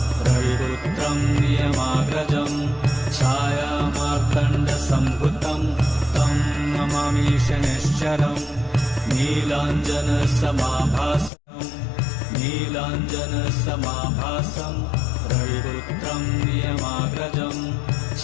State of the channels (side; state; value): right; drops out; at 11.3 s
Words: रविपुत्रं नियमाग्रजं छायामार्तण्डसम्भुतं तं नमामि शनैश्चरम् नीलाञ्जनसमाभासं रविपुत्रं नियमाग्रजं